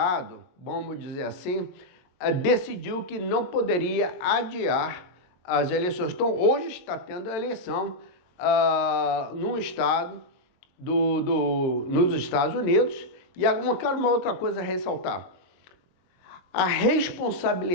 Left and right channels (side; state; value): right; late; 22 ms